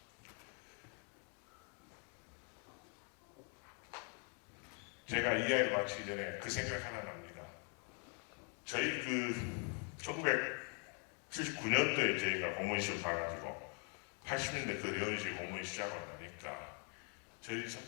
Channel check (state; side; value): quieter; right; 38.9 dB